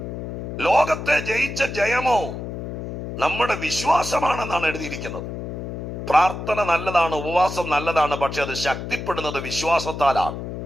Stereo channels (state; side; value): noise; left; hum, 7 dB below the sound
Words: ലോകത്തെ ജയിച്ച ജയമോ നമ്മുടെ വിശ്വാസമാണെന്നാണ് എഴുതിയിരിക്കുന്നത്. പ്രാർത്ഥന നല്ലതാണ്, ഉപവാസം നല്ലതാണ്, പക്ഷെ അത് ശക്തിപ്പെടുന്നത് വിശ്വാസത്താലാണ്.